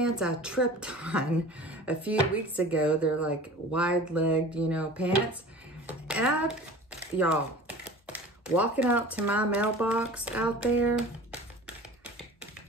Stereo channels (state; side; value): normal; both; correlation 0.40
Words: I tripped on a few weeks ago. They're like wide-legged, you know, pants. And y'all, walking out to my mailbox out there,